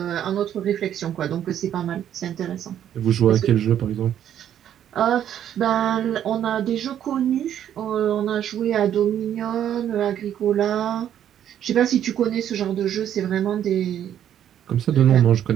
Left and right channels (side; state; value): left; quieter; 10.3 dB